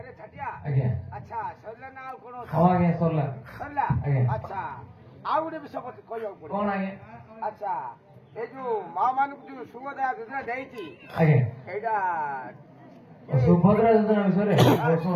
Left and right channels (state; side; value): identical; both; correlation 1.00